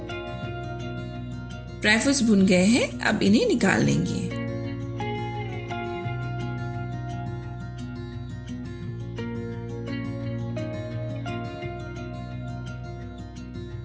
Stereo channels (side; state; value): both; identical; correlation 1.00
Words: ड्राई फ्रूट्स भुन गए हैं, अब इन्हें निकाल लेंगे।